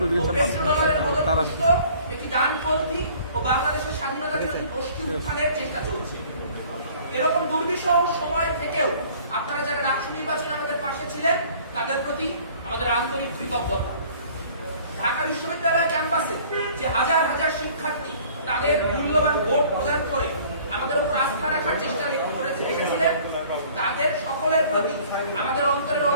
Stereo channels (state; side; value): inverted; both; correlation -0.52